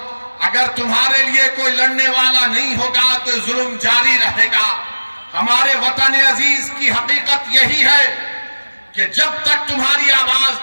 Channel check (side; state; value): both; inverted; correlation -1.00